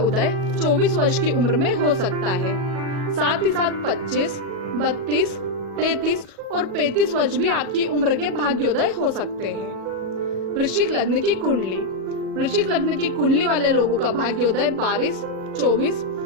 24 वर्ष की उम्र में हो सकता है। साथ ही साथ 25, 32, 33 और 35 वर्ष भी आपकी उम्र के भाग्योदय हो सकते हैं। वृश्चिक लग्न की कुंडली। वृश्चिक लग्न की कुंडली वाले लोगों का भाग्योदय 22, 24,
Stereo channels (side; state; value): left; late; 37 ms